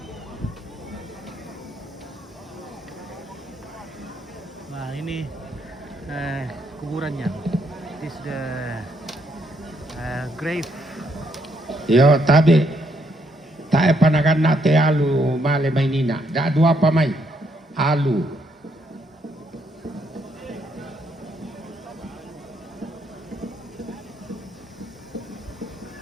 Nah ini kuburannya. This the grave. Yo tabi, tak panagan nate alu male mainina, dak dua pamai alu.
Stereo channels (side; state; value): both; normal; correlation 0.74